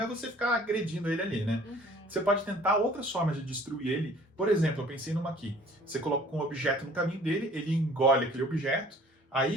é você ficar agredindo ele ali, né? Você pode tentar outras formas de destruir ele. Por exemplo, eu pensei numa aqui. Você coloca um objeto no caminho dele, ele engole aquele objeto.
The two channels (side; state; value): both; normal; correlation 0.52